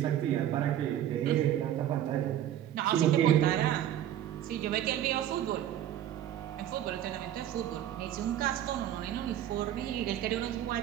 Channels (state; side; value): quieter; left; 11.5 dB